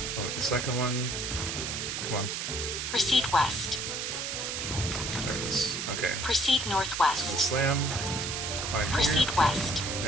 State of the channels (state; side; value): noise; right; hiss, 3 dB below the sound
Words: Avoid the second one. Come on. Proceed west. There it is. Okay. Proceed northwest. Slam. Climb here. Proceed west.